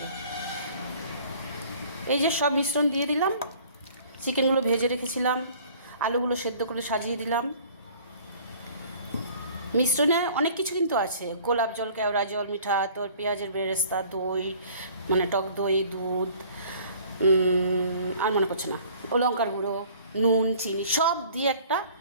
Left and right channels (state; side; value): inverted; both; correlation -0.52